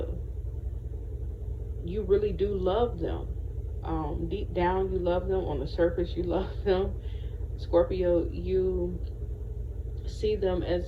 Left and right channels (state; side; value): identical; both; correlation 1.00